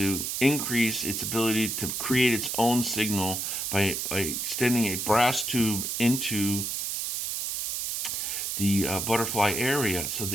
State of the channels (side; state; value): right; noise; hiss, 2 dB below the sound